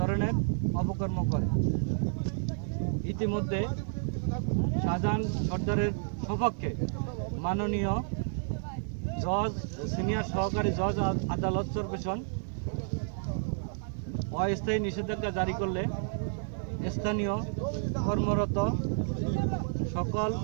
অপকর্ম করে। ইতিমধ্যে শাহজাহান সর্দারের সপক্ষে মাননীয় জজ সিনিয়র সহকারী জজ আদালত চরপেশন অস্থায়ী নিষেধাজ্ঞা জারি করলে স্থানীয় কর্মরত সকল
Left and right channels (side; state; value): left; silent; digital silence